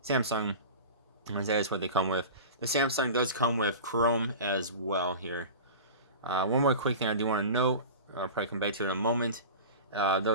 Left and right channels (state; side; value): inverted; both; correlation -0.32